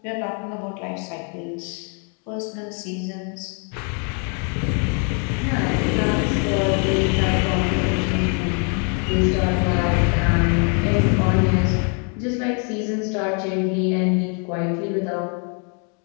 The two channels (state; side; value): quieter; right; 38.2 dB